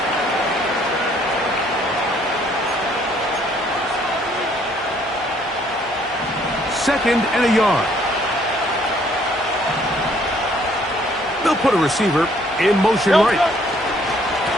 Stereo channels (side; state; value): both; normal; correlation 0.63